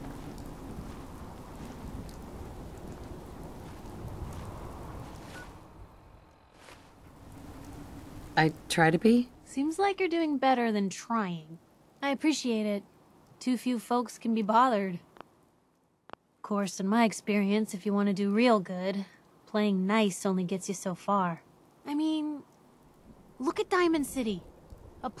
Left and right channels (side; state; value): both; identical; correlation 1.00